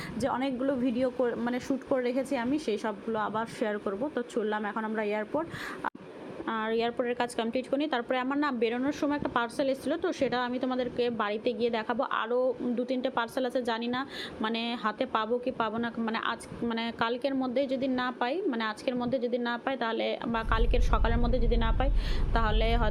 যে অনেকগুলো ভিডিও মানে শ্যুট করে রেখেছি আমি, সেই সবগুলো আবার শেয়ার করব। তো চললাম এখন আমরা এয়ারপোর্ট, আর এয়ারপোর্টের কাজ কমপ্লিট করি। তারপরে আমার না বেরোনোর সময় একটা পার্সেল এসেছিলো, তো সেটা আমি তোমাদেরকে বাড়িতে গিয়ে দেখাবো। আরও 2-3টে পার্সেল আছে, জানি না মানে হাতে পাবো কি পাবো না, মানে কালকের মধ্যে যদি না পাই, মানে আজকের মধ্যে যদি না পাই তাহলে, বা কালকের সকালের মধ্যে যদি না পাই তাহলে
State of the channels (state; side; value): identical; both; correlation 1.00